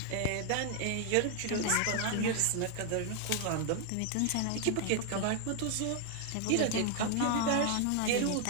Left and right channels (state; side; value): different; both; correlation 0.00